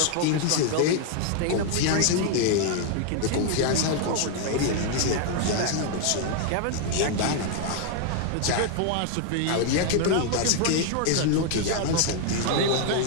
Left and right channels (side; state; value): both; different; correlation 0.00